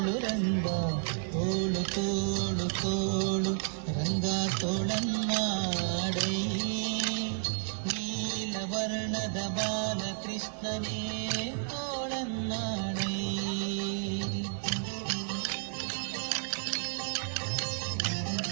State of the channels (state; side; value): silent; left; 57 dB below the other